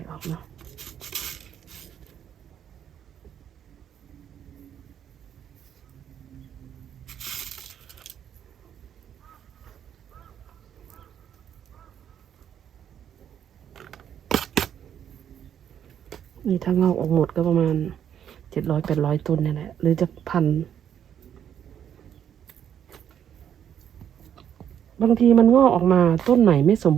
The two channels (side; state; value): left; quieter; 9.3 dB